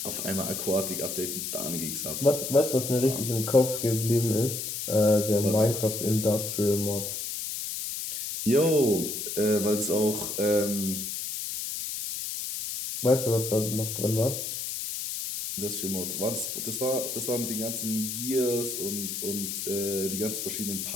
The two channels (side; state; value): left; noise; hiss, 4 dB below the sound